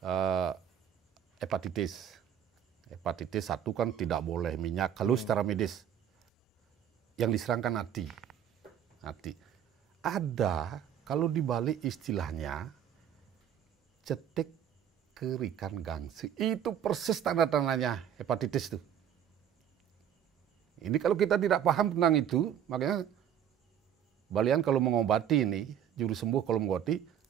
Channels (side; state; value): left; quieter; 9.5 dB